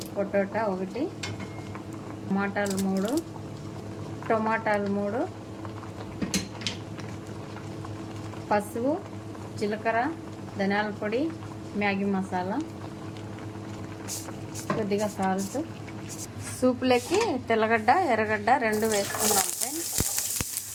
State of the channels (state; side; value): identical; both; correlation 1.00